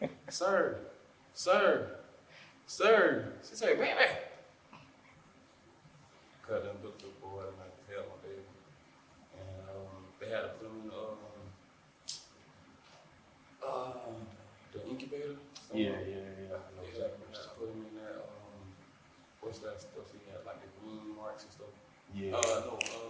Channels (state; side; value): identical; both; correlation 1.00